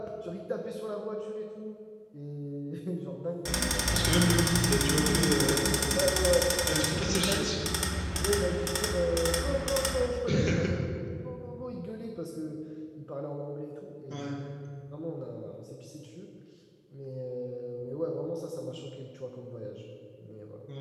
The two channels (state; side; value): identical; both; correlation 1.00